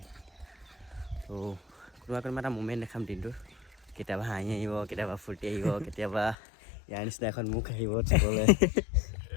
তো কোনোবা এটা মুমেণ্ট দেখাম দিনটোৰ কেতিয়াবা হাঁহি আহিব কেতিয়াবা ফূৰ্তি আহিব কেতিয়াবা ইয়াৰ নিচিনা এখন মুখ আহিব চাবলৈ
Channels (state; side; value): drops out; right; at 6.4 s